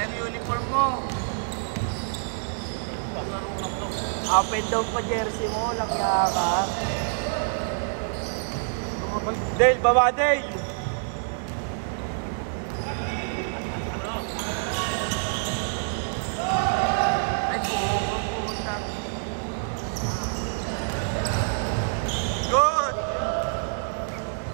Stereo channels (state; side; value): silent; left; digital silence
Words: uniform mo. Open daw po jersey mo, lang ka. Tumabal. Dave, baba Dave! Ay, pupunta. Good!